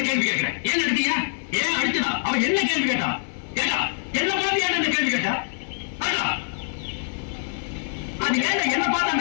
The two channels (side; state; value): right; silent; digital silence